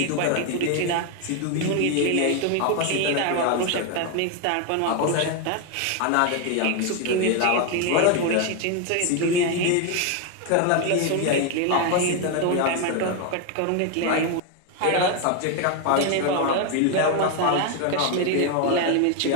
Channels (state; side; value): different; both; correlation 0.01